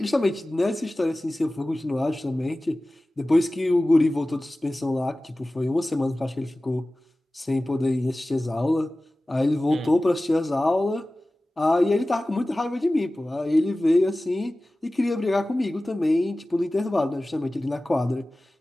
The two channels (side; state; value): both; normal; correlation 0.97